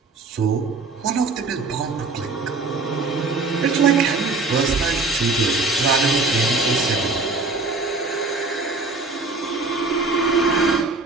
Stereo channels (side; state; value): left; quieter; 3.7 dB